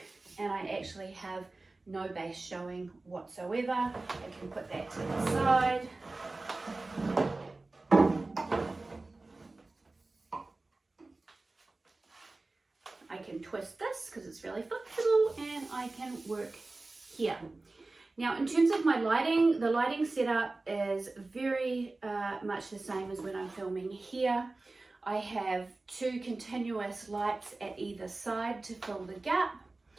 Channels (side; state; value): left; quieter; 3.2 dB